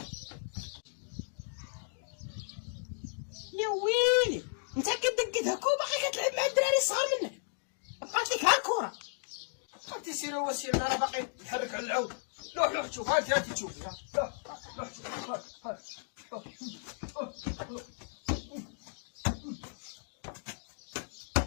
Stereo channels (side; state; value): right; silent; digital silence